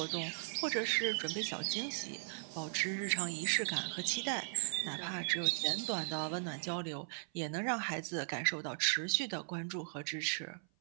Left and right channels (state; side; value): silent; left; 53 dB below the other